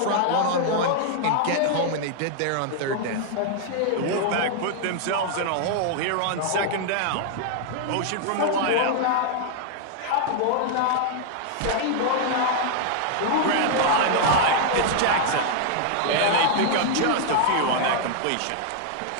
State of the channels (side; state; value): both; different; correlation 0.00